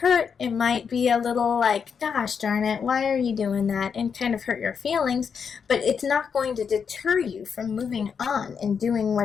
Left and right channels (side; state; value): right; quieter; 6.5 dB